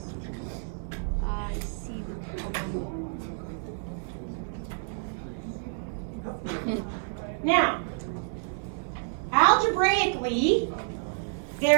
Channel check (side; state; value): left; silent; digital silence